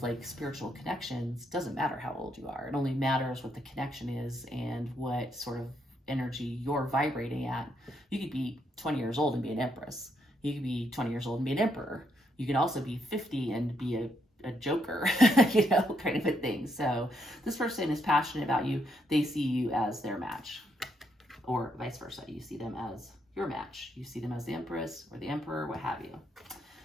like spiritual connections, it doesn't matter how old you are. It only matters what the connection is and what sort of energy you're vibrating at. You could be 20 years old and be an Empress. You could be 20 years old and be an Emperor. You can also be 50 and be a joker, kind of a thing. So this person is passionate about you. They see you as their match, or vice versa. You see them as your match. You see them as the Empress or the Emperor, what have you.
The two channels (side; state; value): both; normal; correlation 0.76